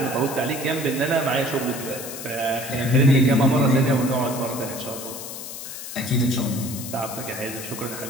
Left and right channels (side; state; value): left; noise; hiss, 9 dB below the sound